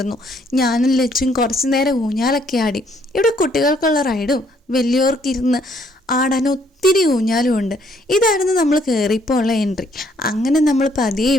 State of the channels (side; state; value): both; normal; correlation 0.67